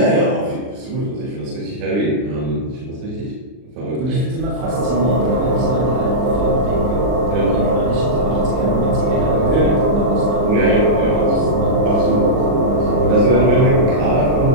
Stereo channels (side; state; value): left; late; 39 ms